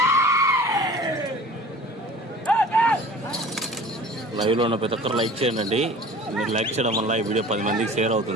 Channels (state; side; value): normal; both; correlation 0.44